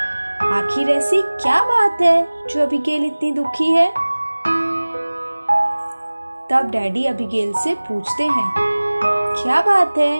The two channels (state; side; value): inverted; both; correlation -1.00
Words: आखिर ऐसी क्या बात है जो अबिगेल इतनी दुखी है? तब डैडी अबिगेल से पूछते हैं, क्या बात है,